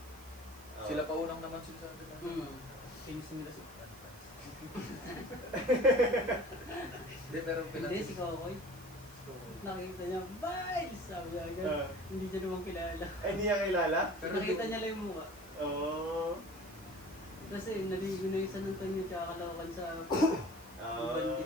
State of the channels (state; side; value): noise; right; hiss, 20 dB below the sound